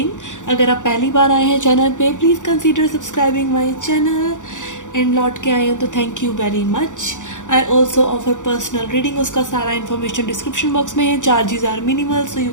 अगर आप पहली बार आए हैं चैनल पे, please consider subscribing my channel. And लौट के आए हो तो thank you very much. I also offer personal reading, उसका सारा इन्फॉर्मेशन डिस्क्रिप्शन बॉक्स में है। Charges are minimal, so you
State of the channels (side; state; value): right; late; 0.86 ms